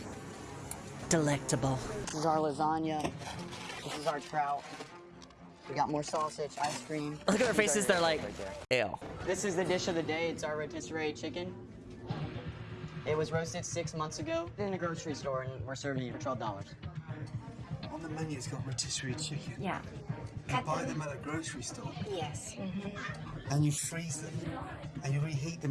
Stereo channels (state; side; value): identical; both; correlation 1.00